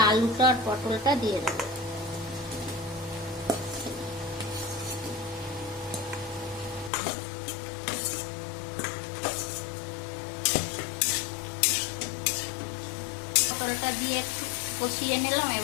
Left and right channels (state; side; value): drops out; right; at 6.9 s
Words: আলুটা আর পটলটা দিয়ে দেবো। পটলটা দিয়ে একটু কষিয়ে নিলাম।